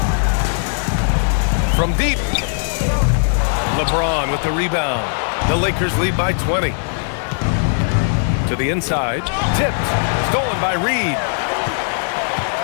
From deep. LeBron with the rebound. The Lakers lead by 20. To the inside. Tipped. Stolen by Reed.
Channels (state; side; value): silent; right; digital silence